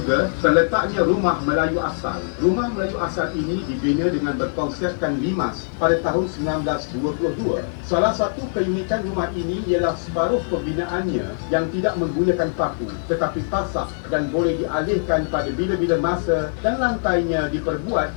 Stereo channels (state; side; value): silent; right; 59 dB below the other